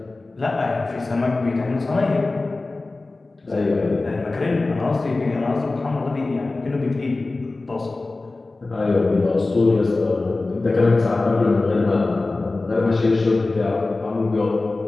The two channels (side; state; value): right; quieter; 3.3 dB